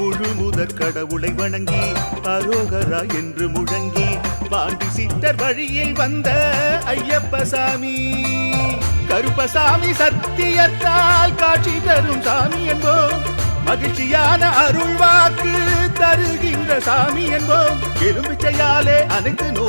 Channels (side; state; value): both; inverted; correlation -1.00